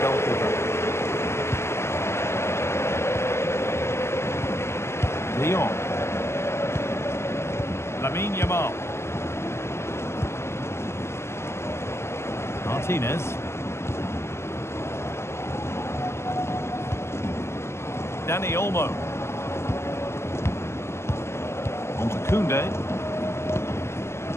De Jong. Lamine Yamal. Martinez. Dani Olmo. On to Koundé.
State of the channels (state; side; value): late; right; 0.13 ms